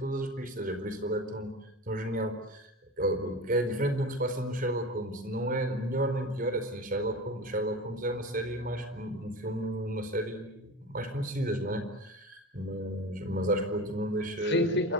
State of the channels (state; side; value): normal; both; correlation 0.31